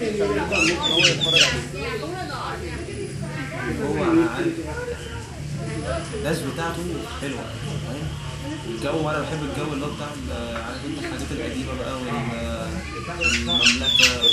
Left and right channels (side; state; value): both; identical; correlation 1.00